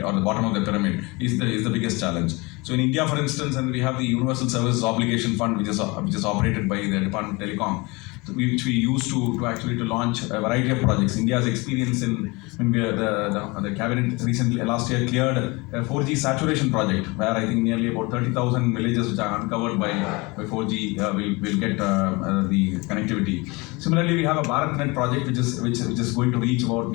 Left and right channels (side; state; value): right; quieter; 25.6 dB